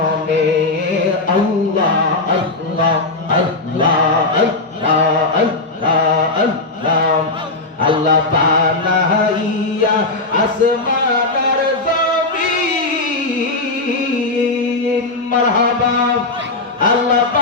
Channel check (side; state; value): right; quieter; 3.2 dB